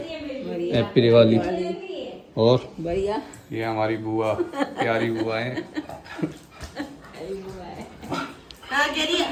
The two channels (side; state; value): both; identical; correlation 1.00